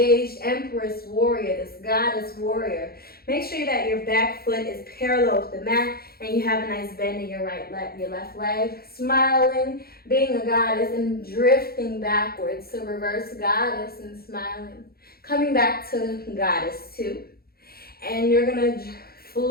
empress warrior, this goddess warrior. Make sure that your back foot is parallel with the mat and you have a nice bend in your your left leg. Smiling, being a goddess, and drifting backwards. So reverse goddess and smiling. Coming back to goddess 2. And you're going to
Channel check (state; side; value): late; right; 0.44 ms